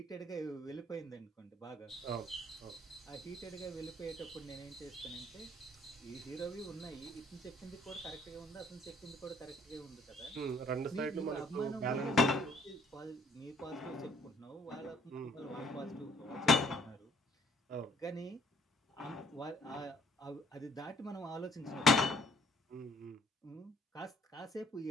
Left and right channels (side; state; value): both; normal; correlation 0.61